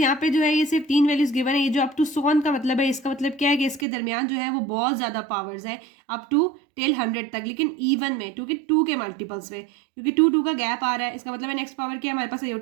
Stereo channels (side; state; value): left; drops out; at 3.9 s